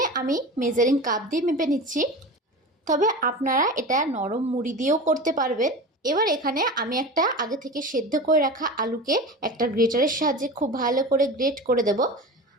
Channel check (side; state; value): both; normal; correlation 0.31